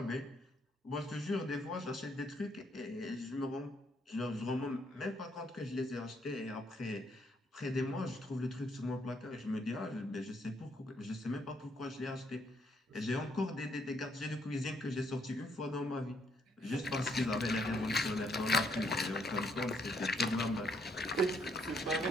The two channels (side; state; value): both; normal; correlation 0.71